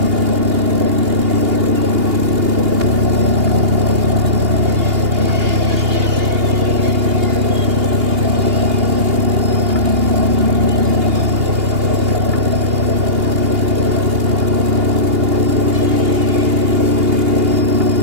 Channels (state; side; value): late; left; 2.8 ms